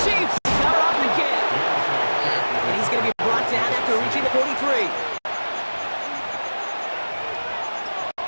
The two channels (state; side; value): inverted; both; correlation -1.00